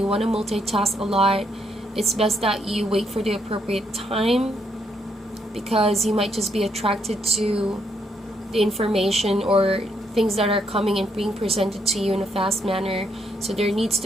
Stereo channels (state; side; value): normal; both; correlation 0.75